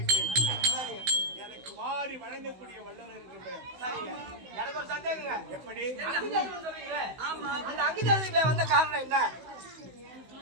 எனக்கு வாரி வழங்கக்கூடிய வல்லவர் என்று எனக்கு ஒரு சந்தேகங்க. எப்படி அந்த அங்குதேசி வந்த காரணம் என்ன?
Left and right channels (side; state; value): left; late; 16 ms